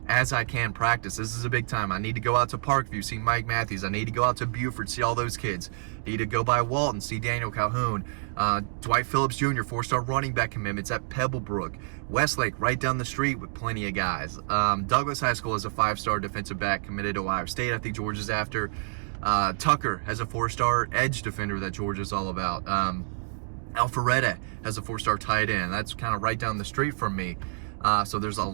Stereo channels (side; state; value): left; silent; digital silence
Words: as I can practice. This is a big time. I need to go out to Parkview, see Mike Matthews. I need to go out to Buford, see all those kids. Need to go by Walton, see Daniel Calhoun. Dwight Phillips Jr., 4-star running back commitments at Pebblebrook. Westlake, right down the street with plenty of guys. Douglas High School has a 5-star defensive back committed to Ohio State. I think Georgia's after. Tucker has a 4-star edge defender that Georgia's all about. Alpharetta has a 4-star tight end. That's kind of right down the street from me. So there's a